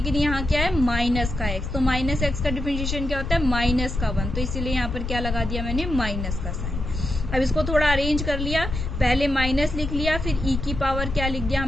यहाँ क्या है माइनस का x। तो -x का डिफरेंशिएशन क्या होता है, -1। तो इसीलिए यहाँ पर क्या लगा दिया मैंने, माइनस का साइन। अब इसको थोड़ा अरेंज कर लिया, पहले माइनस लिख लिया, फिर e की पावर क्या लिख दिया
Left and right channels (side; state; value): left; noise; rumble, 4 dB below the sound